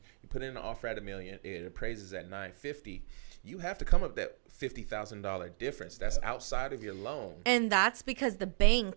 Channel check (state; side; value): silent; left; digital silence